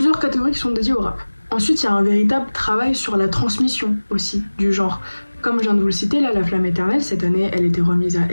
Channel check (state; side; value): inverted; both; correlation -1.00